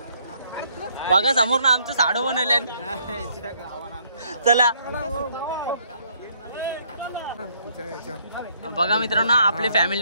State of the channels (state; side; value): inverted; both; correlation -0.67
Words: बघा समोर ना आमचं साडू बनवले. चला बघा मित्रांनो आपले